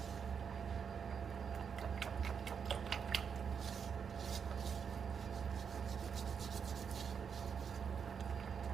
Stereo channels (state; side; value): quieter; left; 6.7 dB